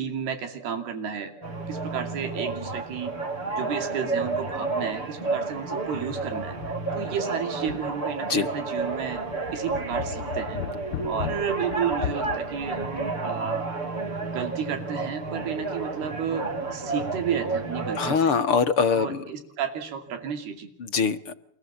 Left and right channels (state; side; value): late; right; 6.8 ms